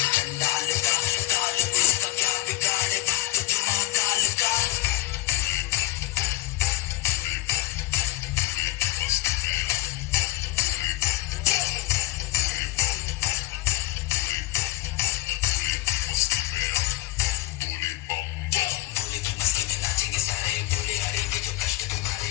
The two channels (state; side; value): quieter; right; 17.4 dB